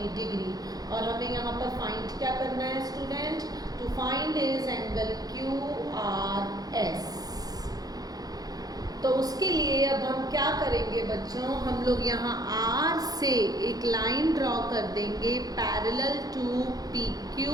degree। और हमें यहाँ पर फाइंड क्या करना है student, to find is angle QRS। तो उसके लिए अब हम क्या करेंगे बच्चों, हम लोग यहाँ R से एक लाइन ड्रॉ कर देंगे parallel to PQ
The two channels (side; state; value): left; late; 0.18 ms